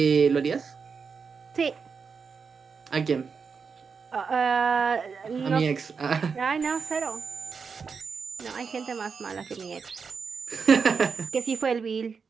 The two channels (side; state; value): left; quieter; 5.5 dB